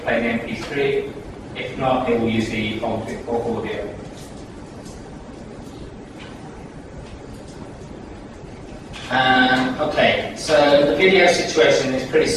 the MP3. If not, it will use the bulk audio. Okay, so the video situation is pretty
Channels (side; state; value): both; identical; correlation 1.00